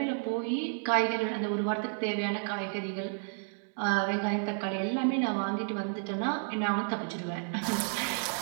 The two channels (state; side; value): silent; left; 57 dB below the other